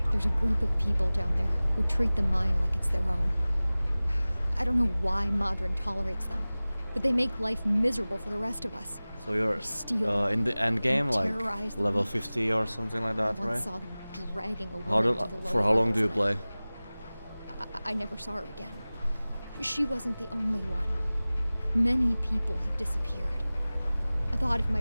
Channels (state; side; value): inverted; both; correlation -0.99